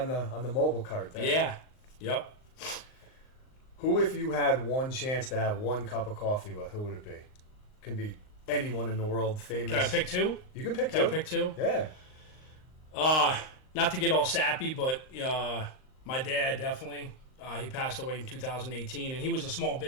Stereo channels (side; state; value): right; late; 38 ms